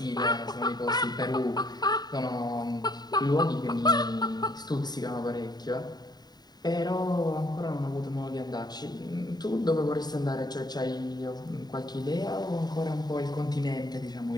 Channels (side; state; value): right; late; 0.20 ms